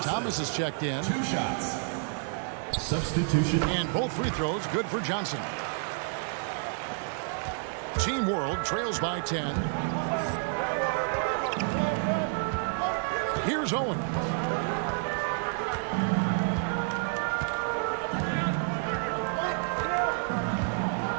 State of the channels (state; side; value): silent; left; 57 dB below the other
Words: Thomas has checked in. 2 shots. Substitution. And both free throws good for Johnson. Team World trails by 10. Here's Owen.